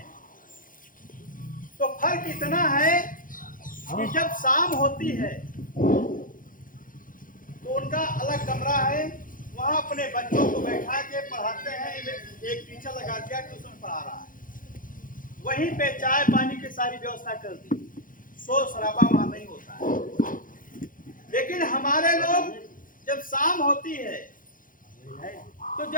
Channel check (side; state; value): right; late; 0.40 ms